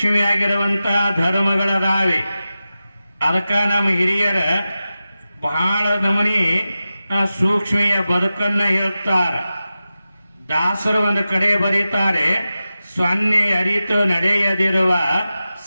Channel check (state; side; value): inverted; both; correlation -0.94